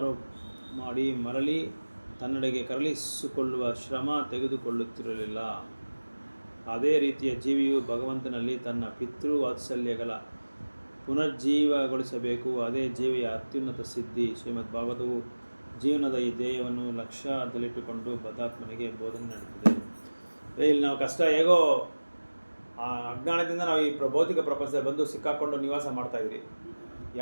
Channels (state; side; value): inverted; both; correlation -1.00